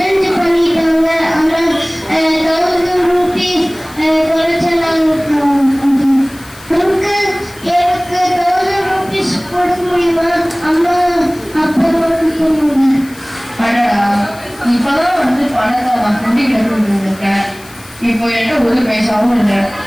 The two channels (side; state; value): left; noise; hiss, 21 dB below the sound